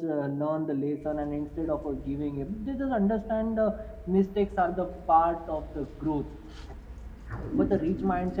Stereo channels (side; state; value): both; identical; correlation 1.00